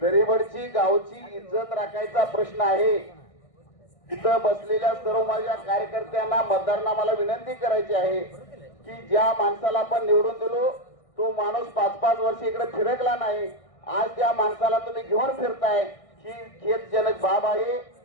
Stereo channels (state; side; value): late; right; 1.6 ms